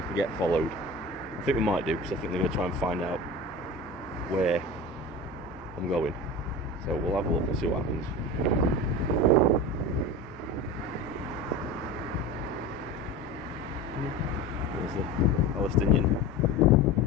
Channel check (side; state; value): both; normal; correlation 0.30